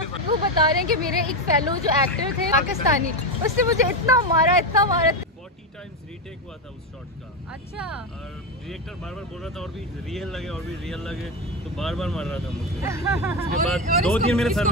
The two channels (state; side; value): normal; both; correlation 0.12